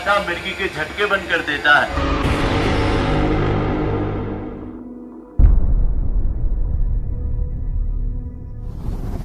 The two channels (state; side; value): identical; both; correlation 1.00